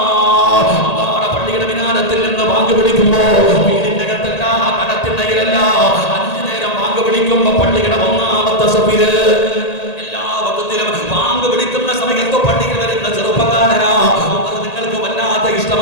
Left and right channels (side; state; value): right; late; 1.8 ms